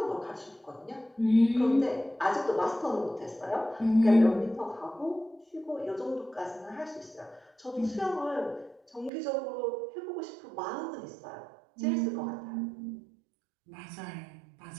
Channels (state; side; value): drops out; left; at 9.1 s